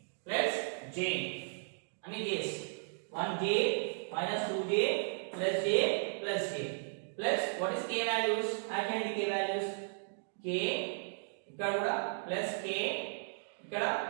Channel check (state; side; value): silent; left; digital silence